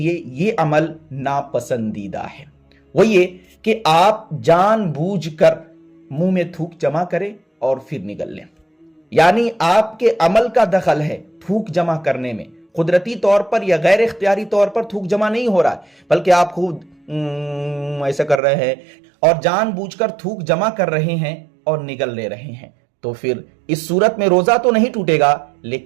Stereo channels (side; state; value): left; drops out; at 18.4 s